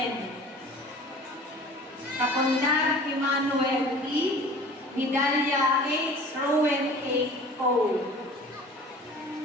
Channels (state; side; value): normal; both; correlation 0.44